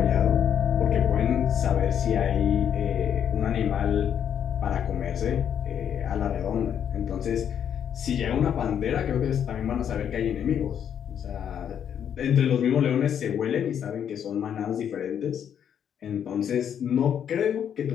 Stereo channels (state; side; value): quieter; right; 8.8 dB